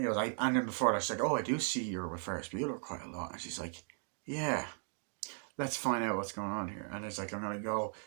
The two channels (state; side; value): silent; left; 53 dB below the other